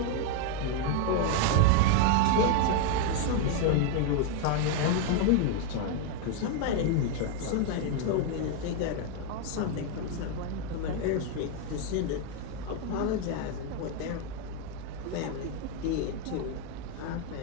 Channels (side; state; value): both; different; correlation 0.01